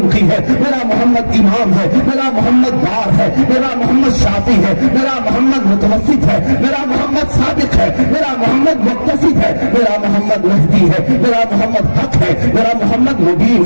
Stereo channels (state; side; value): inverted; both; correlation -1.00